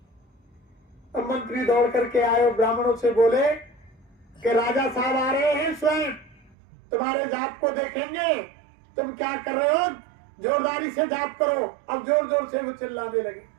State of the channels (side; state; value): left; drops out; at 6.6 s